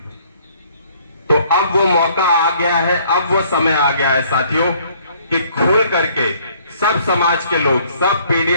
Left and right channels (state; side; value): inverted; both; correlation -0.61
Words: तो अब वो मौका आ गया है, अब वो समय आ गया है साथियों कि खुल करके सब समाज के लोग, सब